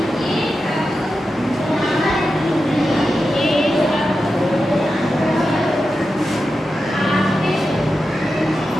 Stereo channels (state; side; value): normal; both; correlation 0.90